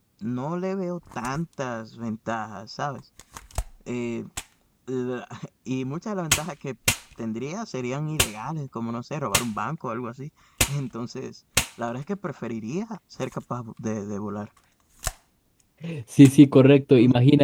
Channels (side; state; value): both; identical; correlation 1.00